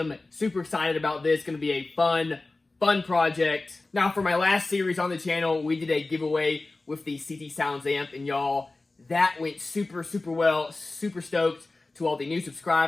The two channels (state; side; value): quieter; right; 3.3 dB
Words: Super excited about this. Going to be a fun project. Now, for my last series on the channel, we did a giveaway with the CT Sounds amp, and y'all, that went super well. Super stoked to all the new